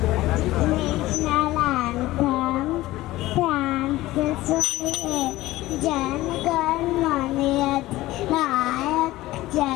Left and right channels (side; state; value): right; quieter; 17.3 dB